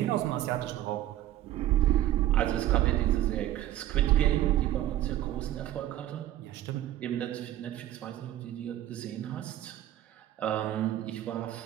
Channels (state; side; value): quieter; left; 13.4 dB